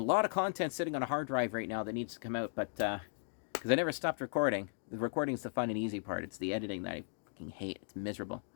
of content sitting on a hard drive right now that needs to come out, but because I never stopped recording. The recording is the fun and easy part. It's the editing that I fucking hate. It's miserable.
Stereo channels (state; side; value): silent; right; digital silence